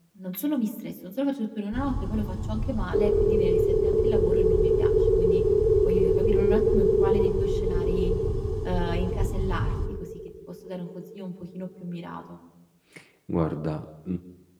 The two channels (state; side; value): identical; both; correlation 1.00